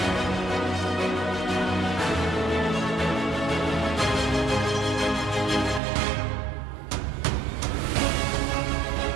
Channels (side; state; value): left; drops out; at 5.8 s